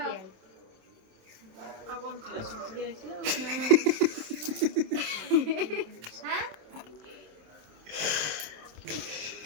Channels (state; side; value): late; left; 27 ms